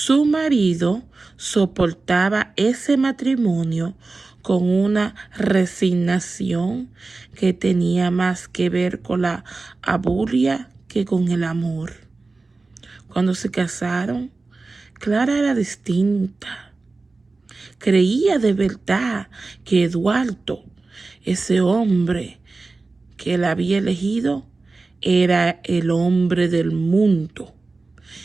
marido soportaba ese matrimonio con una resignación que tenía más que ver con la abulia que con el amor. Cuando se casaron, Clara era distinta. Creía de verdad que Eduardo, ese hombre que la había elegido, era el hombre del mundo.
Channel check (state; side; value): quieter; left; 3.6 dB